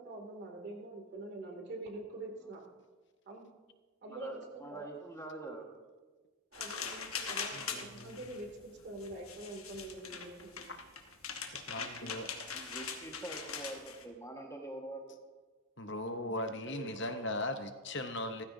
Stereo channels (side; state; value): both; normal; correlation 0.03